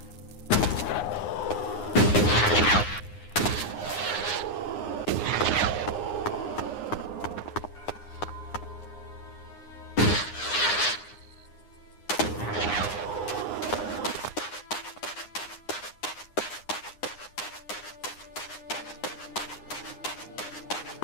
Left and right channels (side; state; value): right; late; 9.7 ms